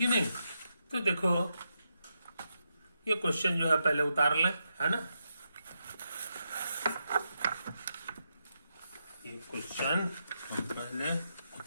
नहीं। तो देखो ये क्वेश्चन जो है पहले उतार लें, है ना, ये क्वेश्चन हम पहले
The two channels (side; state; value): both; inverted; correlation -0.85